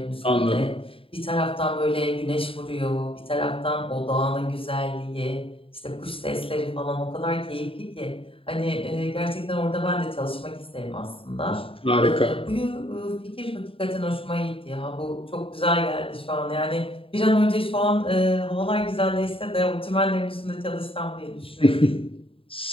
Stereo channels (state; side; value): late; right; 0.27 ms